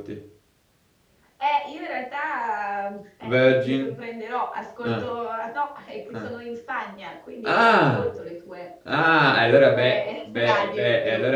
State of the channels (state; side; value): identical; both; correlation 1.00